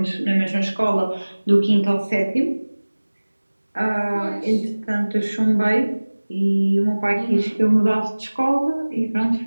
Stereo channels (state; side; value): inverted; both; correlation -1.00